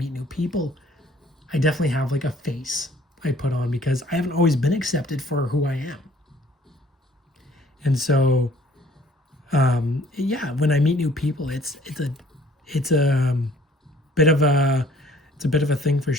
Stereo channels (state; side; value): normal; both; correlation 0.57